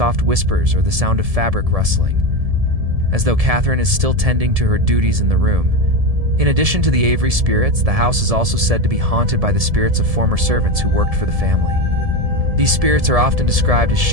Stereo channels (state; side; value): late; left; 1.7 ms